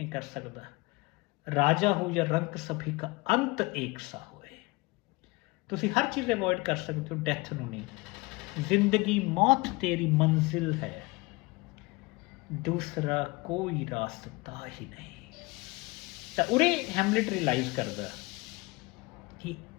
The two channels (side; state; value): right; quieter; 24.3 dB